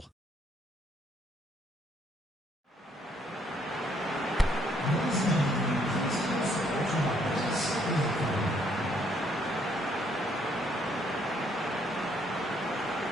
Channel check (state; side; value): normal; both; correlation 0.68